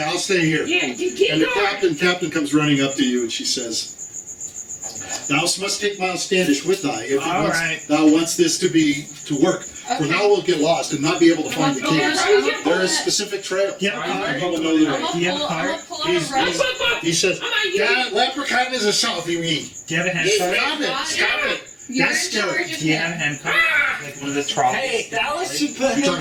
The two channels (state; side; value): identical; both; correlation 1.00